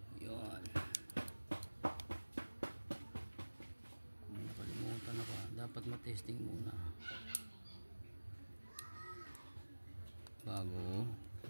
dapat matesting muna bago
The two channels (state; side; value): inverted; both; correlation -1.00